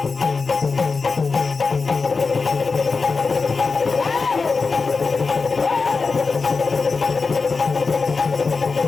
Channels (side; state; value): right; quieter; 4.5 dB